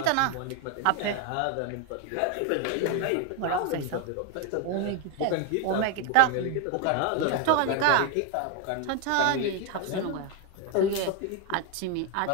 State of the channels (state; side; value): different; both; correlation 0.01